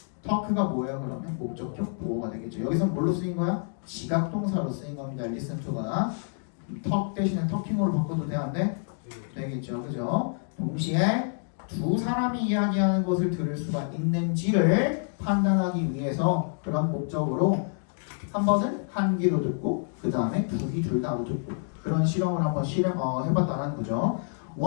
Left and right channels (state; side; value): silent; right; digital silence